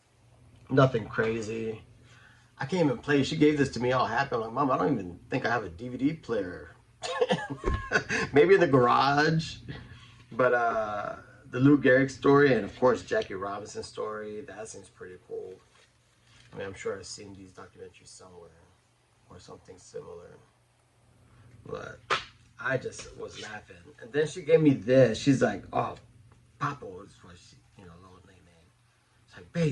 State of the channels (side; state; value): both; identical; correlation 1.00